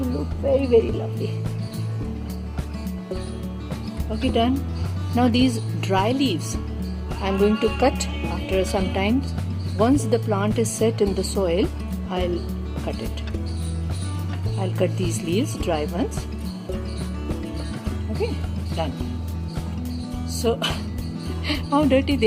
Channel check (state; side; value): identical; both; correlation 1.00